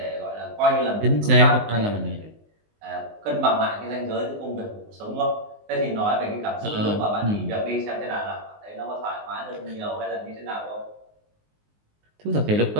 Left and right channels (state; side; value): late; left; 19 ms